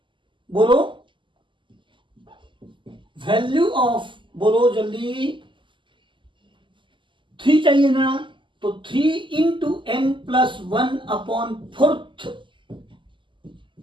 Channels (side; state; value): left; late; 0.24 ms